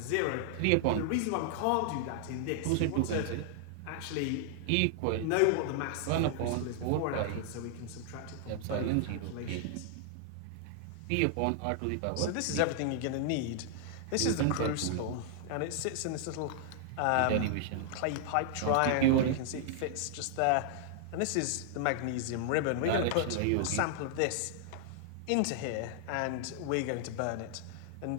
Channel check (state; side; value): different; both; correlation -0.01